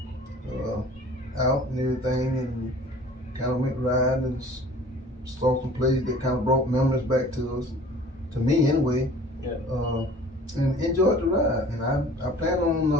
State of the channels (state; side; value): normal; both; correlation 0.47